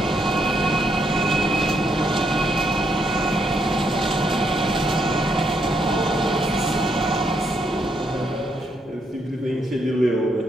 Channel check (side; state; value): both; normal; correlation 0.76